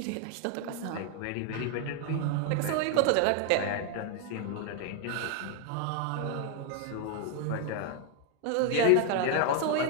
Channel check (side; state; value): both; different; correlation 0.00